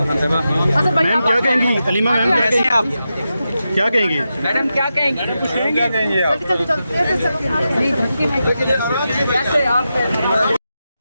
क्या कहेंगी? Aleema ma'am कैसे हैं आप? क्या कहेंगी? मैडम क्या कहेंगी? क्या कहेंगी आप?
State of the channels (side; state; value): both; inverted; correlation -0.89